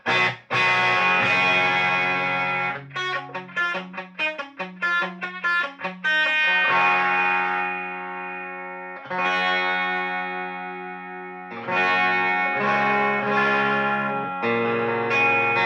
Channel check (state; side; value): identical; both; correlation 1.00